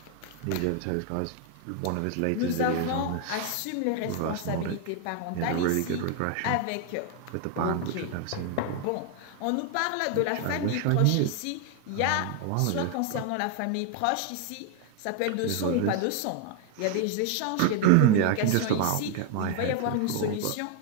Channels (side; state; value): both; different; correlation 0.01